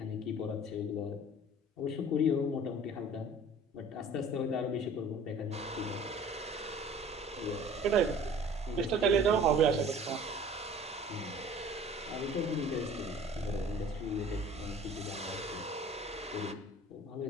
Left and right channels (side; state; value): both; normal; correlation 0.47